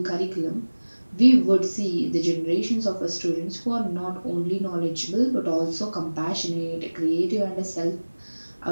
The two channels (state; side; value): inverted; both; correlation -1.00